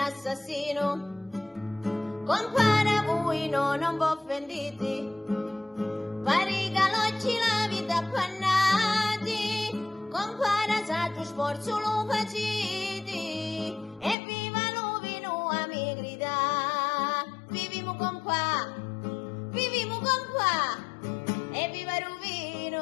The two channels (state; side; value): drops out; right; at 14.2 s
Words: Compare voi non vi offendete, pare che oggi la vita appannati, compare saggio sforzo lo faciti, e viva Lovino a mi grida, viviamo con pa, e viva